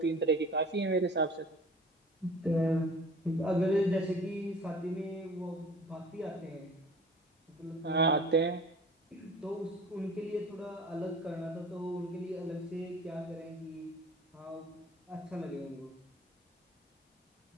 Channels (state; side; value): normal; both; correlation 0.44